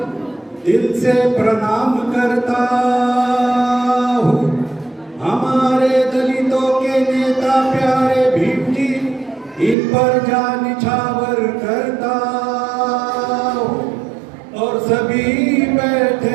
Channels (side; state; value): left; drops out; at 9.8 s